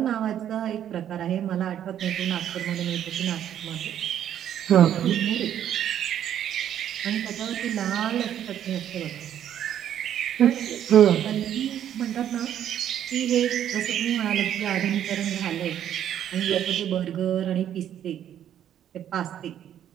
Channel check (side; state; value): left; quieter; 10.4 dB